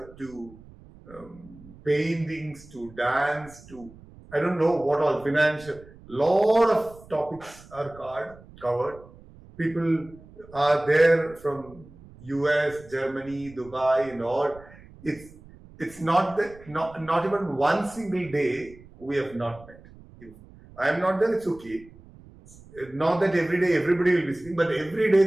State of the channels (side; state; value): right; noise; rumble, 22 dB below the sound